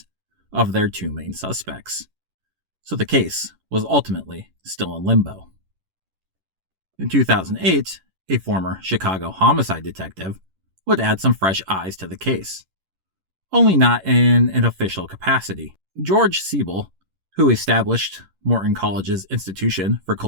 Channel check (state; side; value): late; left; 11 ms